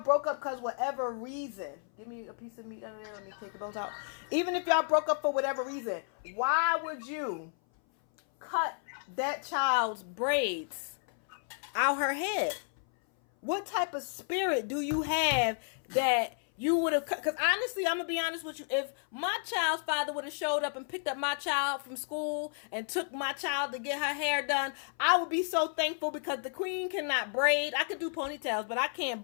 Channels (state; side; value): silent; right; 56 dB below the other